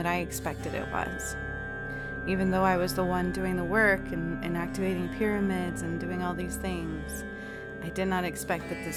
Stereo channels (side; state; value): both; identical; correlation 1.00